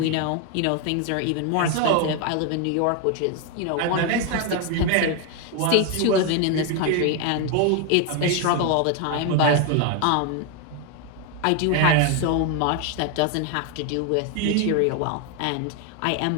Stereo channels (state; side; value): different; both; correlation 0.01